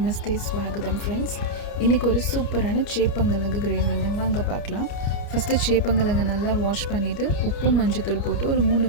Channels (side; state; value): right; late; 29 ms